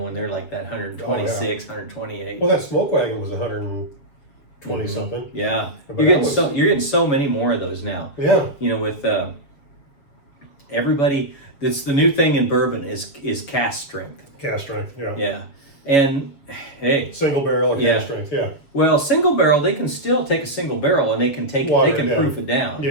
they're like that 126, 128. Well, that smoke wagon was 120 something. Yeah, But you're that getting so many more of those now. Yeah. With everybody, that's the new thing in bourbon is cask strength. Cast strength. Yeah. Yeah, and hey, Single barrel and Yeah. cast strength. Yeah. well, single barrel, they can still take a single barrel and they can Water they can it down. proof it down.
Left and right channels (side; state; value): right; late; 7.2 ms